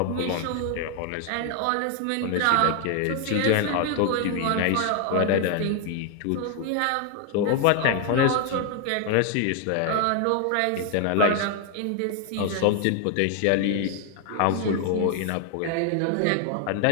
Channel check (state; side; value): different; both; correlation 0.01